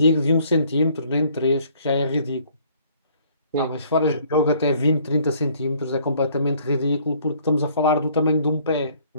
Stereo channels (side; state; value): both; inverted; correlation -0.60